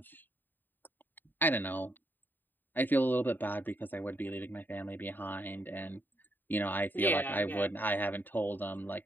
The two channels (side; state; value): right; late; 0.091 ms